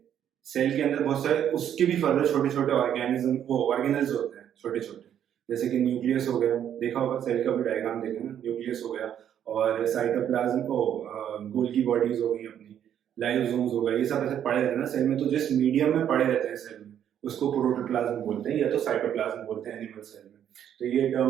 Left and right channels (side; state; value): left; quieter; 9.8 dB